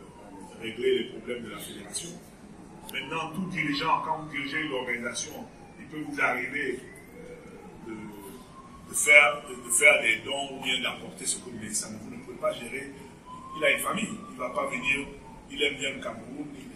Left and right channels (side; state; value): both; identical; correlation 1.00